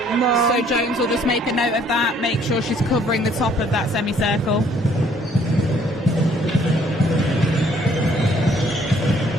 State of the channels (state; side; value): normal; both; correlation 0.62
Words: No. So Jones will just make a note of that, make sure she's covering the top of that semicircle.